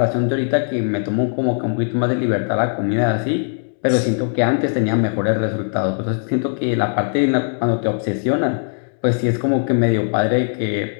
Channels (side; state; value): right; silent; digital silence